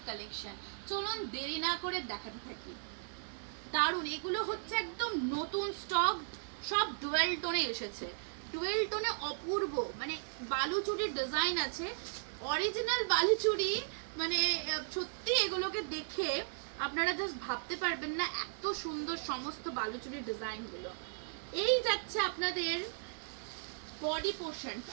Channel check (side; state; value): left; silent; digital silence